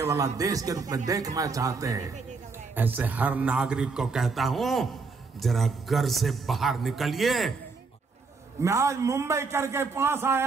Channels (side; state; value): left; quieter; 4.4 dB